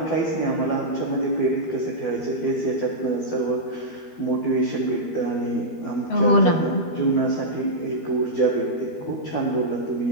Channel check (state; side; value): late; right; 12 ms